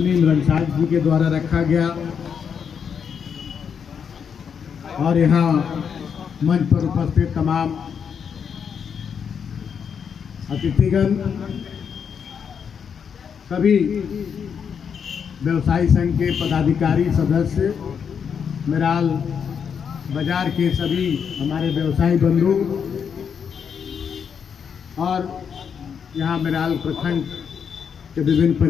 रंसाज जी के द्वारा रखा गया और यहाँ मंच पर उपस्थित तमाम अतिथिगण, सभी व्यवसायी संघ के पदाधिकारी सदस्य, मेराल बाजार के सभी हमारे व्यवसायी बंधु और यहाँ मेराल प्रखंड के विभिन्न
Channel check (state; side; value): quieter; right; 7.1 dB